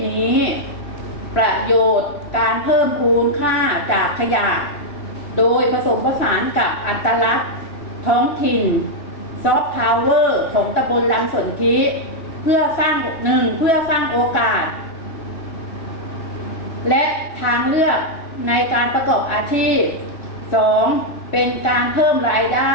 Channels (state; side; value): late; right; 3.1 ms